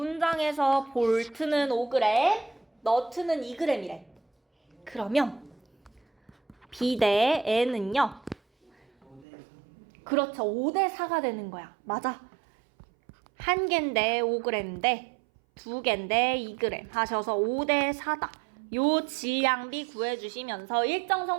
볼트는 5g, 너트는 2g이래. 그러면 B 대 N은요? 5대 3. 그렇죠. 5대 4가 되는 거야. 맞아. 한 개인데 5g인데 두 개인데 2g 하셔서 5대 4다. 요 질량비 구해주시면서 일정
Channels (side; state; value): left; drops out; at 9.2 s